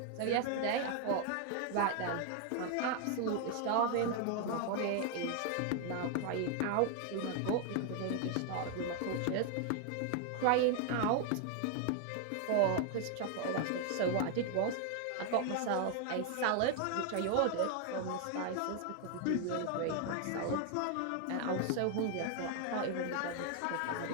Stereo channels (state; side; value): different; both; correlation 0.00